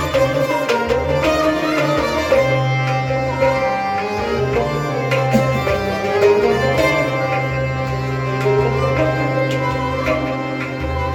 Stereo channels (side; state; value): both; identical; correlation 1.00